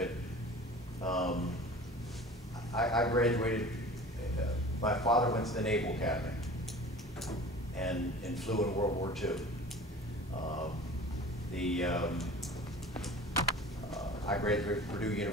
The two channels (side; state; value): both; normal; correlation 0.41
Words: I graduated, my father went to the Naval Academy and flew in World War II. I graduated from Purdue